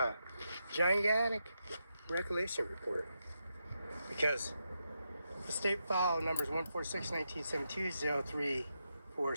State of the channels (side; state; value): both; inverted; correlation -0.85